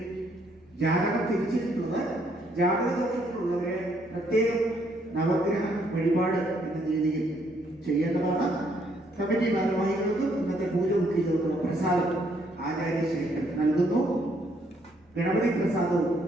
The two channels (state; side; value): normal; both; correlation 0.69